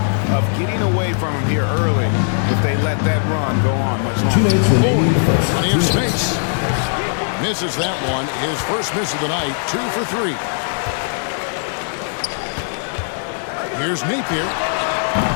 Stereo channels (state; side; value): silent; right; 62 dB below the other